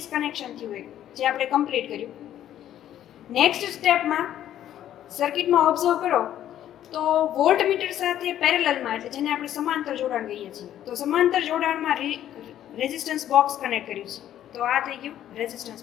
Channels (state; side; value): quieter; right; 11.5 dB